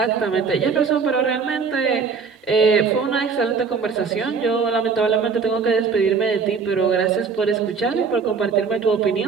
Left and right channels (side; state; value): left; quieter; 5.4 dB